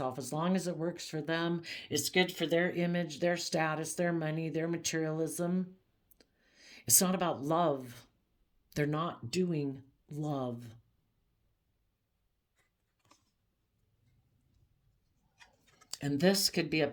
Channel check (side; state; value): both; identical; correlation 1.00